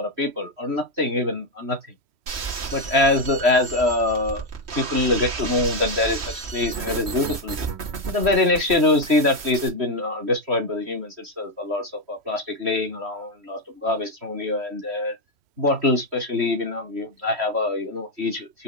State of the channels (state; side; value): late; left; 3.1 ms